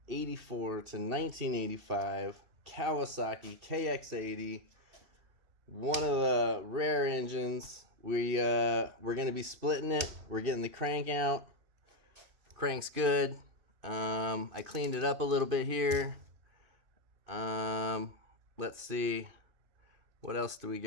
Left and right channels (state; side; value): late; left; 2.5 ms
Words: to 1985 Kawasaki KX80. One of the rare engines. We're going to be splitting it. We're getting the crank out. Crank's good. I cleaned it up a little bit here. Let's see. What else do we